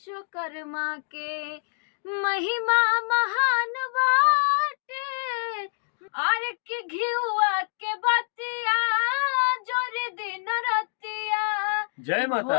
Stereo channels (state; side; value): silent; right; digital silence